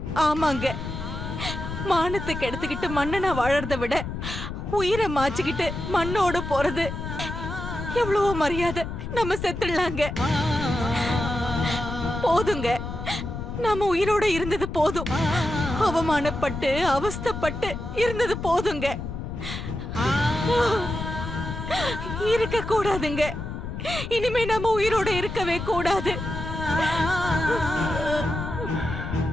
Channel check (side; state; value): left; noise; rumble, 6 dB below the sound